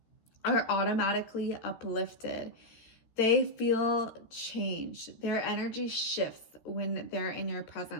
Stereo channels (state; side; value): late; right; 13 ms